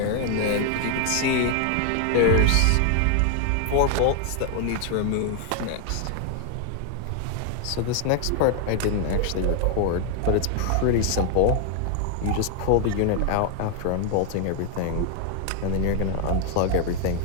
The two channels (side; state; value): both; different; correlation 0.00